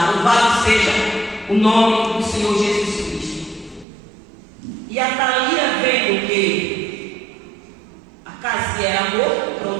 Louvado seja o nome do Senhor Jesus Cristo. E a Thalia, vendo que a casa era morta, o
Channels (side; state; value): left; drops out; at 3.9 s